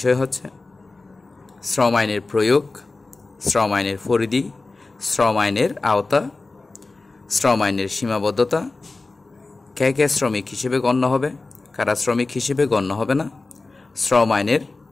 হচ্ছে শ্রম আইনের প্রয়োগ, শ্রম আইনের পরিধি, শ্রম আইনের আওতা, শ্রম আইনের সীমাবদ্ধতা, কে কে শ্রমিক হিসেবে গণ্য হবে, কারা শ্রমিক হিসেবে গণ্য হবে না, শ্রম আইনের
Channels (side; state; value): right; quieter; 3.5 dB